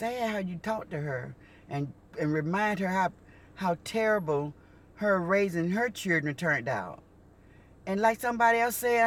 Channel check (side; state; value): both; identical; correlation 1.00